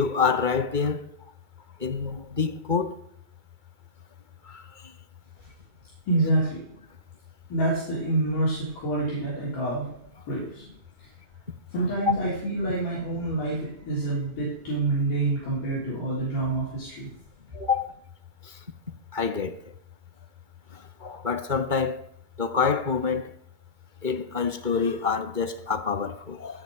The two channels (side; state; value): left; late; 2.2 ms